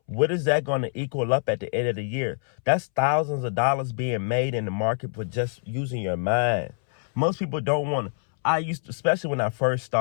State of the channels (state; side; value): silent; right; 61 dB below the other